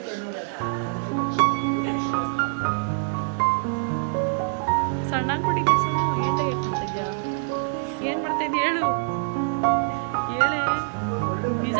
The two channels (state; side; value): silent; left; digital silence